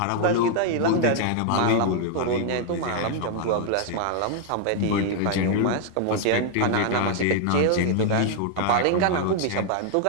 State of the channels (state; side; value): different; both; correlation 0.00